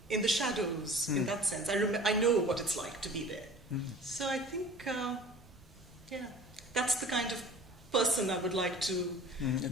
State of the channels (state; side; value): normal; both; correlation 0.44